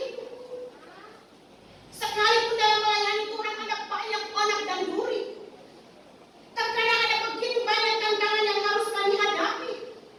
Sekalipun dalam melayani Tuhan ada banyak onak dan duri. Terkadang ada begitu banyak tantangan yang harus kami hadapi.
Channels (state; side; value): identical; both; correlation 1.00